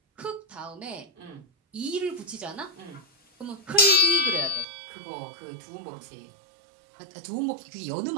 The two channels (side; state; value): left; drops out; at 4.7 s